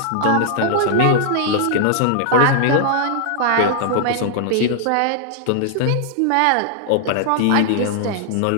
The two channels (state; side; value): different; both; correlation -0.01